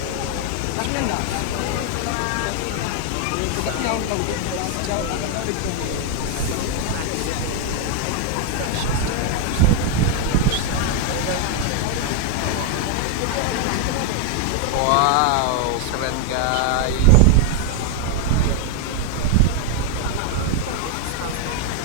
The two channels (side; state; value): both; different; correlation 0.00